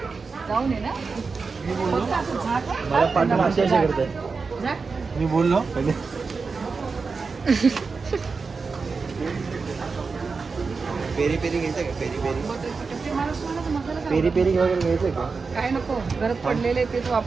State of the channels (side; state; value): left; quieter; 4.7 dB